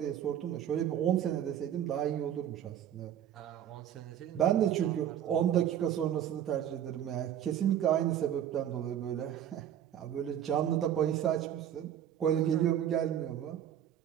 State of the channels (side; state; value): left; quieter; 10.4 dB